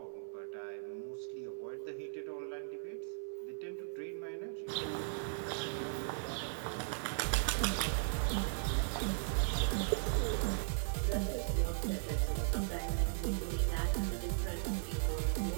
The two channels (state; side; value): silent; left; 53 dB below the other